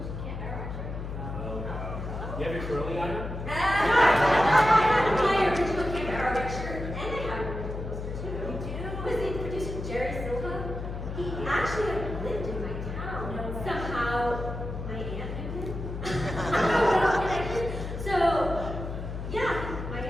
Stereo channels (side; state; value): left; noise; hum, 6 dB below the sound